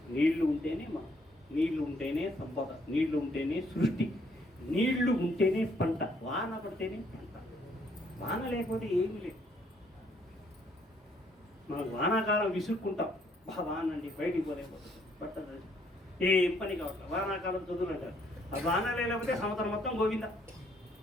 నీళ్లు ఉంటేనే నీళ్లు ఉంటేనే సంపద, నీళ్లు ఉంటేనే సృష్టి, నీళ్లు ఉంటేనే పంట, వాన పడితేనే పంట. వాన లేకపోతే ఏమీ లేదు. మనం వానాకాలం విసుక్కుంటాం, వాన అండి బయటికి పోలేకపోతుంది, పట్టదు, ఏం పని కావట్లేదు. వానాకాలం చదువులంటారు. ఆ వాన లేకపోతే సంవత్సరం మొత్తం గోవిందా.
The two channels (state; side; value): normal; both; correlation 0.67